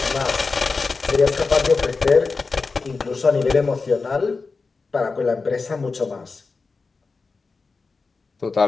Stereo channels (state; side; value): quieter; right; 4.3 dB